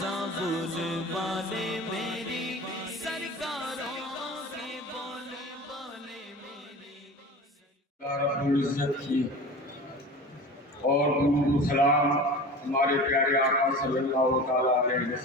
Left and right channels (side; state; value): both; normal; correlation 0.35